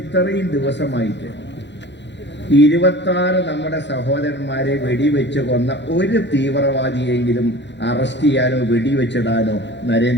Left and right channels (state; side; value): late; right; 0.52 ms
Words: ദിവസമായിട്ട് 26 നമ്മുടെ സഹോദരന്മാരെ വെടിവെച്ച് കൊന്ന ഒരു തീവ്രവാദിയെങ്കിലും അറസ്റ്റ് ചെയ്യാനോ വെടിവെച്ചിടാനോ